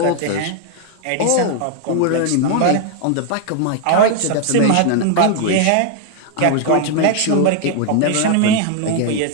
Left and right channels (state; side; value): different; both; correlation 0.00